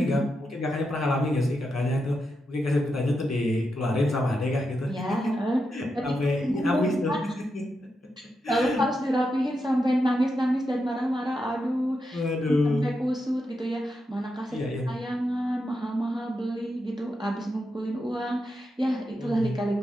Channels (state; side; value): normal; both; correlation 0.86